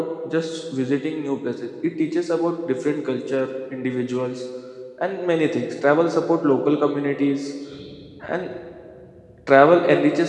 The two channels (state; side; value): identical; both; correlation 1.00